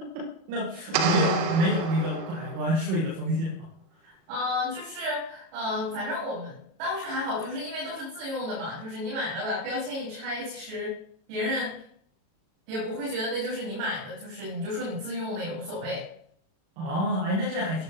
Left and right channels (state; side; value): late; left; 37 ms